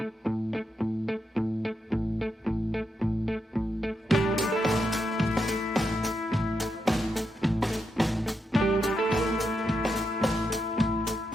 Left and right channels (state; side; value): normal; both; correlation 0.84